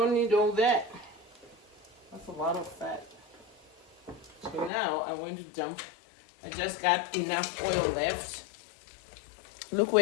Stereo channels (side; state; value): right; drops out; at 4.7 s